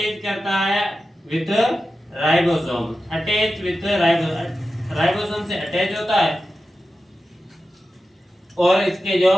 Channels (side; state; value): both; normal; correlation 0.92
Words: करता है with ribosome, attach with ribosome से अटैच होता है, और इसके जो